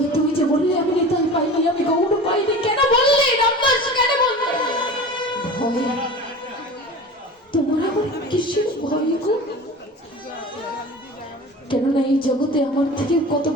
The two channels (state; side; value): normal; both; correlation 0.35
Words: তুমি যে বললে আমি নিতাই পাইনি, আমি গৌর পাইনি, কেন বললে রামদাস, কেন বললে? ভয়? তোমার আবার কিসের ভয় গো? কেননা এই জগতে আমার থেকে কত